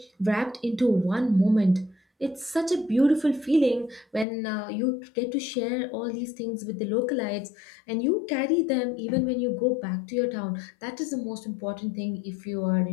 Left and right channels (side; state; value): right; drops out; at 4.2 s